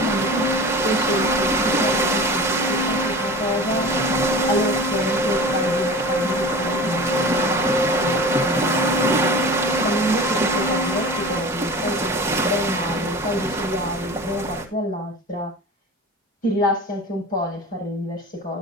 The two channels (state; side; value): normal; both; correlation 0.35